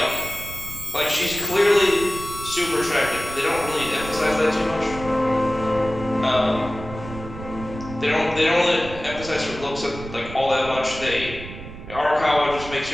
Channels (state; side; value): noise; right; rumble, 12 dB below the sound